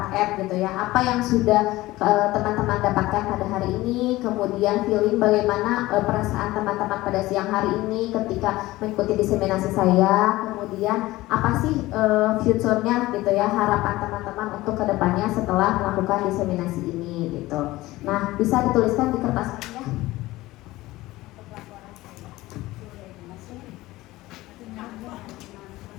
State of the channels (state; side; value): quieter; right; 18.1 dB